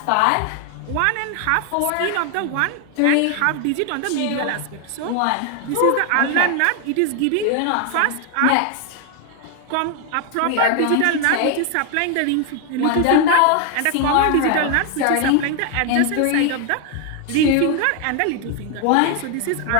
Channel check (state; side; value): different; both; correlation 0.00